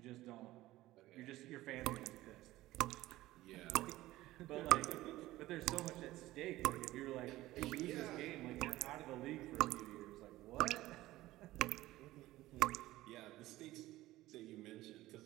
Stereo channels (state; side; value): quieter; left; 16.8 dB